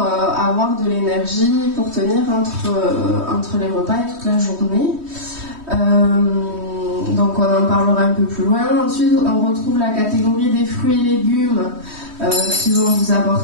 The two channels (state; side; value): late; left; 3.2 ms